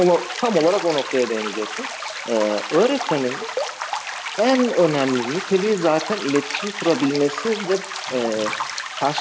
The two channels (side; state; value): both; identical; correlation 1.00